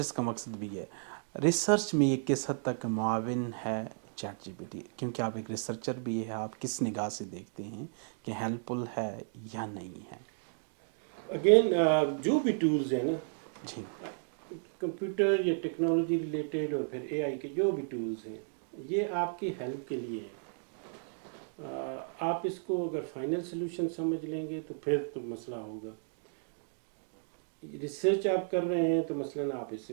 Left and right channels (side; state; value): left; silent; digital silence